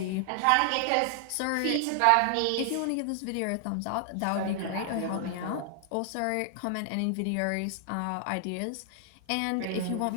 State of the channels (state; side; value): different; both; correlation 0.00